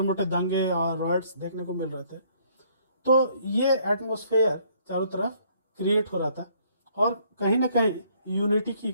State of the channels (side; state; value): both; inverted; correlation -0.64